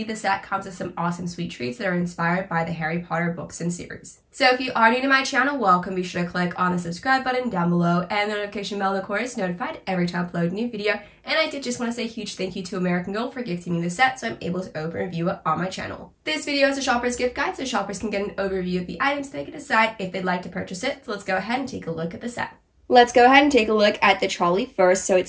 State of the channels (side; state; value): both; identical; correlation 1.00